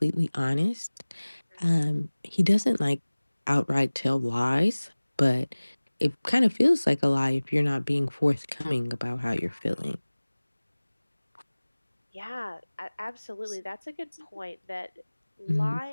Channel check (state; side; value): inverted; both; correlation -1.00